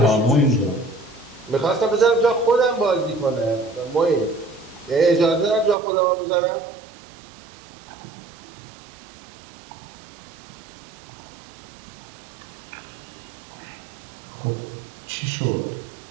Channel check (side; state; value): left; drops out; at 5.8 s